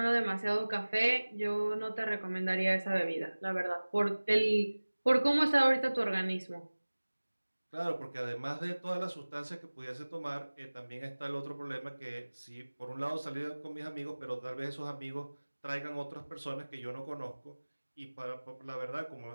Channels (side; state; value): both; inverted; correlation -1.00